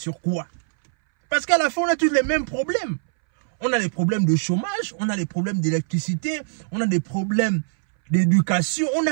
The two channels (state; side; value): silent; left; 62 dB below the other